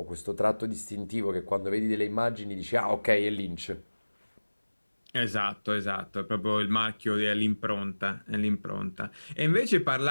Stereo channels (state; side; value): inverted; both; correlation -1.00